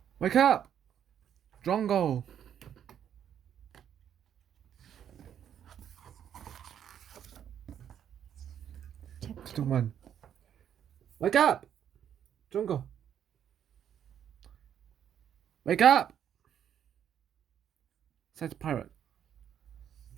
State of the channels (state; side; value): quieter; left; 9.4 dB